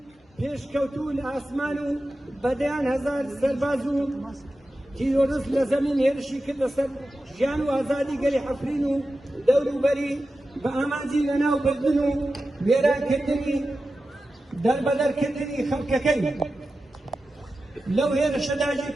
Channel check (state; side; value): normal; both; correlation 0.93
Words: پێشکەوتوو لە ئاسمان و بەدەیان هەزار سەرباز و تیرۆریست لە زەمین هێرشی کرد لەسەر ژیان و ئازادی گەلی عەفرین و دەوروبەری بە ئامانجی لەناوبردن و وێرانکردنی دەربەدەرکردنی خەڵکەکەی لەو هێرشەدا